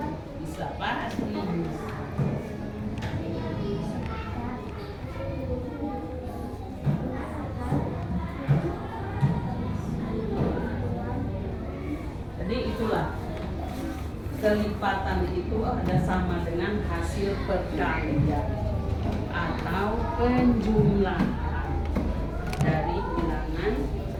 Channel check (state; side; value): identical; both; correlation 1.00